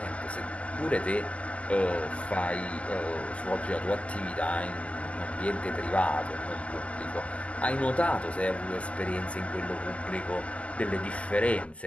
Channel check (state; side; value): late; right; 0.063 ms